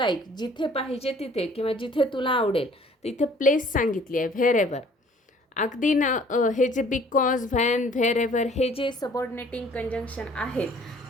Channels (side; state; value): both; normal; correlation 0.55